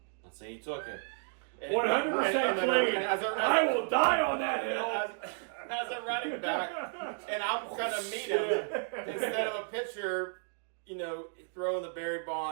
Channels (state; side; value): silent; left; 56 dB below the other